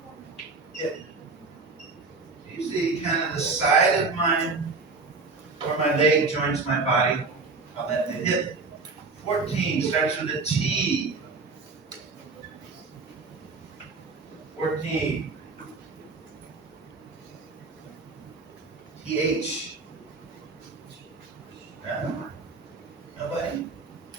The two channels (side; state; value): left; quieter; 4.0 dB